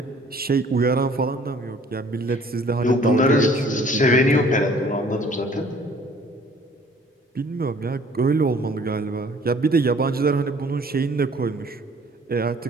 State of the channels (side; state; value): both; normal; correlation 0.55